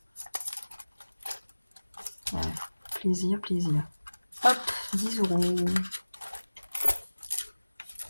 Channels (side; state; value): both; inverted; correlation -1.00